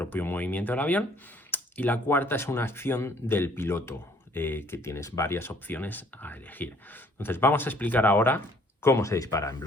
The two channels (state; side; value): normal; both; correlation 0.59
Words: movimiento del avión y la cuarta es una acción del piloto, que tienes varias opciones a elegir. Entonces vamos a explicar ahora cómo se dispara en